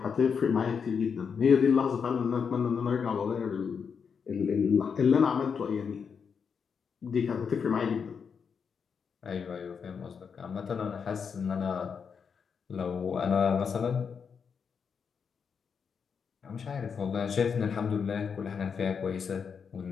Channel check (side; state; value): right; quieter; 6.3 dB